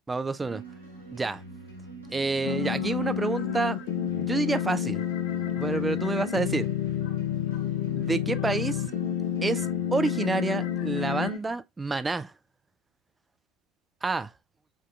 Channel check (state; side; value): normal; both; correlation 0.44